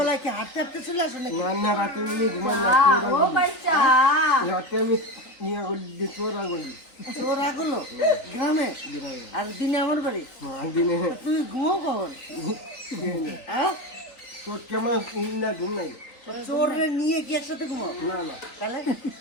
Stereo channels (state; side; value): late; right; 3.8 ms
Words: কি হাঁটতে হাঁটতে চলে আসো নাকি? না রাতে আমি ঘুমাই না, ও বাচ্চা রাতে আমি নিয়ে গলি চোরা গলি চোর আগলো গ্রামে, আর দিনে আমার বাড়ি। দিনে তুমি ঘুমাও কখন? হ্যাঁ, তোর কেমন না ঘুম নাই? চোরে নিয়ে কি একসাথে ঘুমাও? না তাহলে